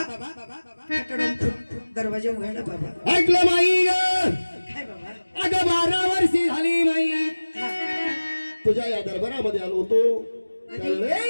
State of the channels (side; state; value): both; inverted; correlation -1.00